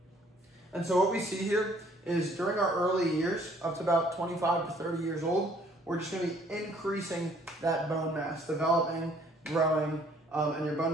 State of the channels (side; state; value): both; normal; correlation 0.60